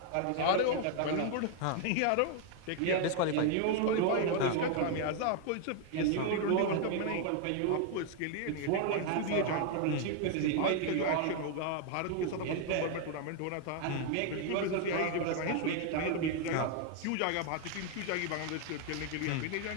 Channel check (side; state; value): both; different; correlation 0.00